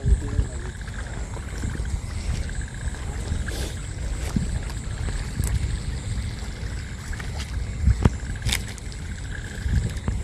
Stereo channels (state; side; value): identical; both; correlation 1.00